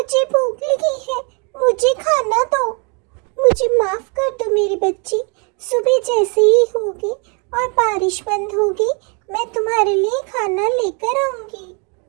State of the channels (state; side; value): quieter; left; 34.8 dB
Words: भूख लगी है, मुझे खाना दो। मुझे माफ कर दो मेरी बच्ची, सुबह जैसे ही होगी और बारिश बंद होगी मैं तुम्हारे लिए खाना लेकर आऊंगी।